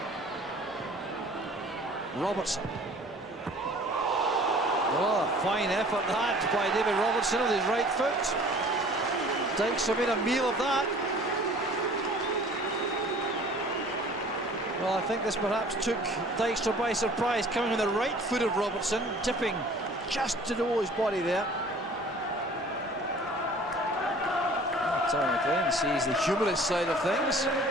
Robertson. Oh, fine effort that by David Robertson with his right foot. Dykstra made a meal of that. Well, I think this perhaps took Dykstra by surprise, coming on the right foot of Robertson, dipping just to the his body there. Terry McLean sees the humorous side of things.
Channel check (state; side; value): normal; both; correlation 0.49